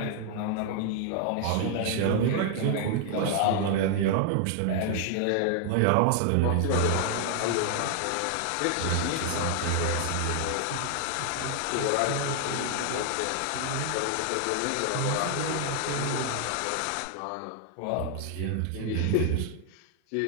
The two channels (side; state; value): both; different; correlation 0.00